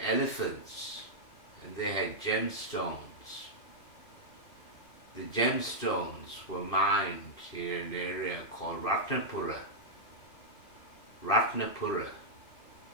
elephants, and they had gemstones. The gemstones were mined in an area called Ratnapura. Ratnapura.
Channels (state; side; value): late; right; 2.7 ms